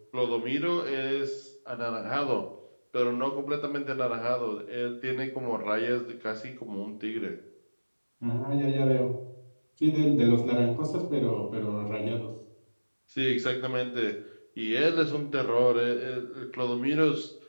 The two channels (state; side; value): inverted; both; correlation -1.00